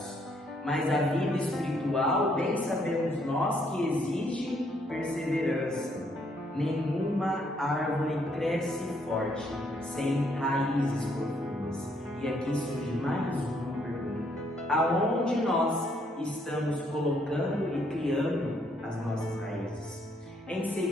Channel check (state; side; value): normal; both; correlation 0.70